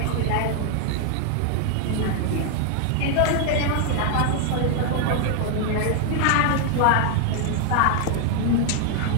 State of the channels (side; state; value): both; different; correlation 0.00